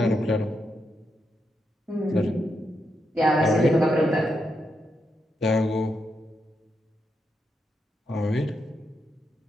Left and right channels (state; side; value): normal; both; correlation 0.83